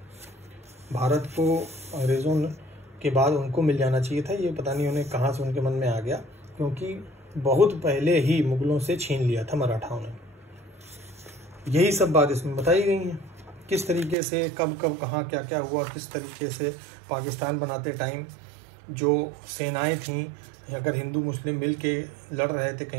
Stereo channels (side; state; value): left; drops out; at 14.2 s